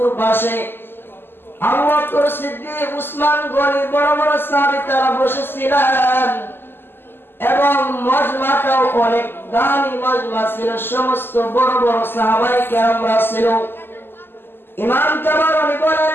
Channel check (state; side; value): late; right; 0.10 ms